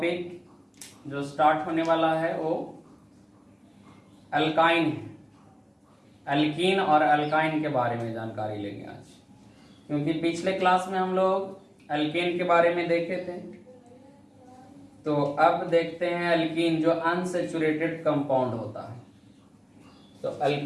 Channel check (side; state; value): both; identical; correlation 1.00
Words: जो स्टार्ट होने वाला है वो अल्काइन है। अल्कीन और अल्काइन के बारे में जानकारी लेंगे आज, क्योंकि पिछले क्लास में हम लोग अल्केन के बारे में देखे थे। तो अब देखते हैं अल्कीन जो अनसैचुरेटेड कंपाउंड होता है। तो